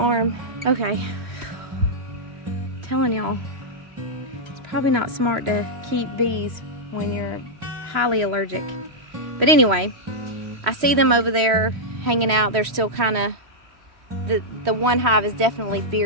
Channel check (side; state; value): left; late; 3.1 ms